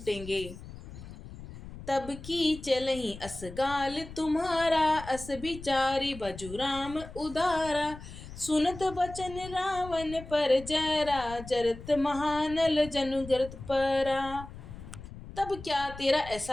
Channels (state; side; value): noise; left; rumble, 14 dB below the sound